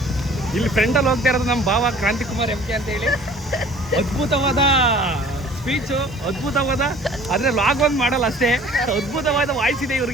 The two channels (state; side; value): noise; right; hiss, 28 dB below the sound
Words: ಇಲ್ಲಿ ಫ್ರೆಂಡಲ್ಲಿ ಹೋಗ್ತಾ ಇರೋದು ನಮ್ಮ ಭಾವ ಕ್ರಾಂತಿಕುಮಾರ್ MK ಅಂತ ಹೇಳಿ. ಅದ್ಭುತವಾದ ಸ್ಪೀಚು, ಅದ್ಭುತವಾದ, ಆದರೆ ಲಾಗ್ ಒಂದು ಮಾಡಲ್ಲ ಅಷ್ಟೇ. ಅದ್ಭುತವಾದ ವಾಯ್ಸ್ ಇದೆ